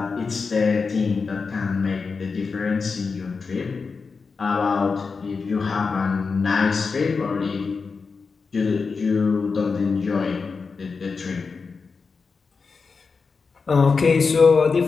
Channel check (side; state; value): right; quieter; 4.8 dB